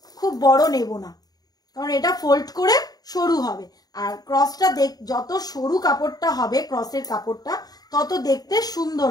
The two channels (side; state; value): right; late; 0.19 ms